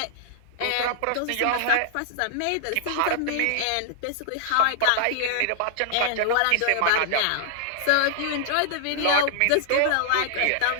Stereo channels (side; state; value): both; different; correlation -0.01